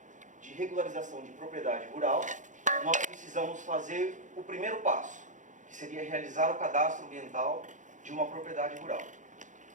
de regularização de propriedade rural, nós precisamos fazer o primeiro passo, que seria realizar o cadastro ambiental de uma propriedade rural.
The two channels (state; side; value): late; left; 0.36 ms